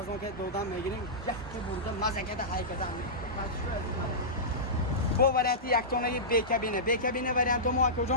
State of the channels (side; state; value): both; normal; correlation -0.17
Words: که دادم میگیریم یک که برده مزه کرده های کرده پاسچوی عزیز با وریانت یک تانه بی کابینه وریانت ما کجا